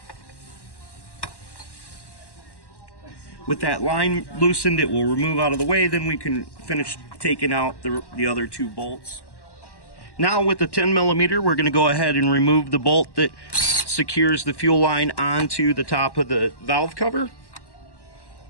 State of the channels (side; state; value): right; late; 1.1 ms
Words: With that line loosened, it will remove out of the way. Then we can finish taking out the other two bolts. Now with the 10mm, we're going to go ahead and remove the bolt that secures the fuel line onto the top of the valve cover.